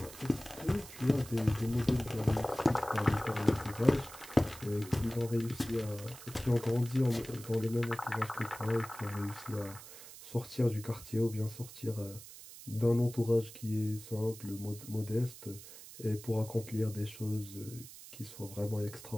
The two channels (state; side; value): noise; right; hiss, 15 dB below the sound